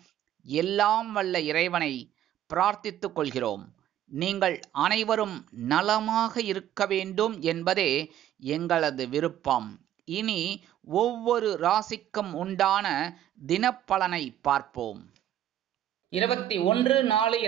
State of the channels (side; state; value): left; quieter; 11.6 dB